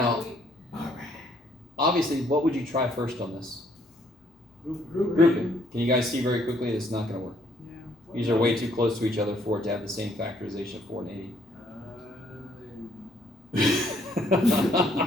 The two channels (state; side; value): normal; both; correlation 0.66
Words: obviously, what would you try first on this? Grouping. Can you guys see very quickly it's not going to work? Yeah. These are way too close to each other for it to have the same factorization of 4 and 80.